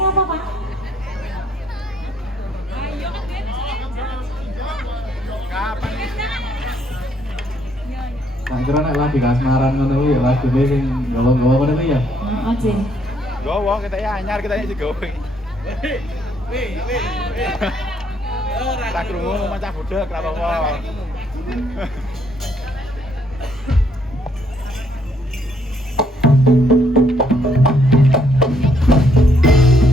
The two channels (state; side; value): normal; both; correlation 0.70